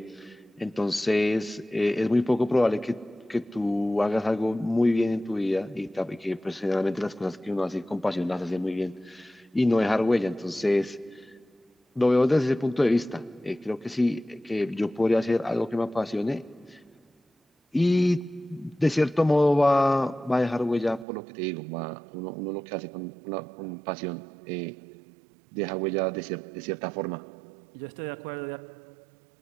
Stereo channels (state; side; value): drops out; left; at 21.1 s